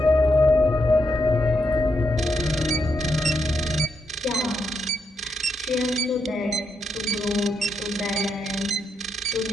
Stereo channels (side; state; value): both; normal; correlation 0.80